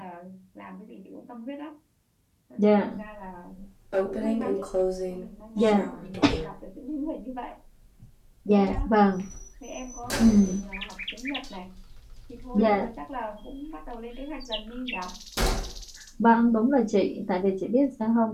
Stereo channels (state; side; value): identical; both; correlation 1.00